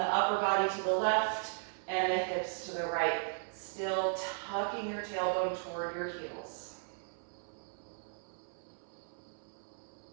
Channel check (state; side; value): silent; left; 54 dB below the other